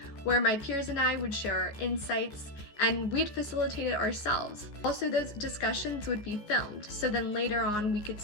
where my peers and I would share our insights and we'd facilitate it ourselves. Also, those discussions would be filmed, so then later on we could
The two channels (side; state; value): right; late; 14 ms